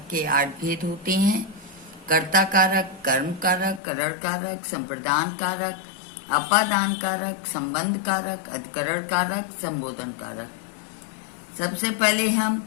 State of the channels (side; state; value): right; drops out; at 3.8 s